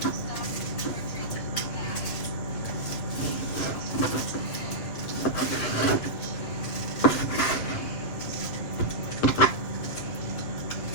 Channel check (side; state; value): right; late; 8.5 ms